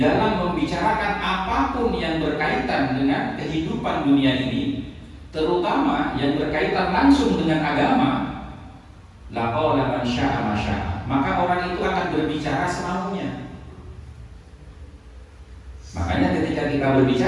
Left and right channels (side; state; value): both; identical; correlation 1.00